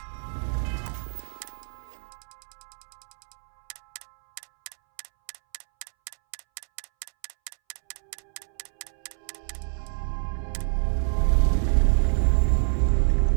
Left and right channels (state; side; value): silent; left; 60 dB below the other